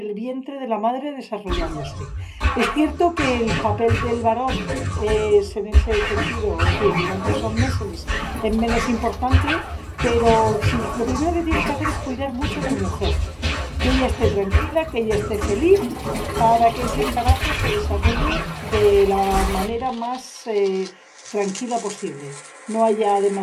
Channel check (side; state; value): both; identical; correlation 1.00